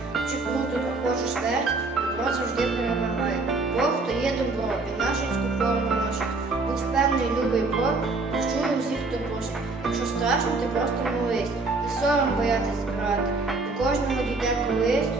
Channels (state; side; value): quieter; left; 3.5 dB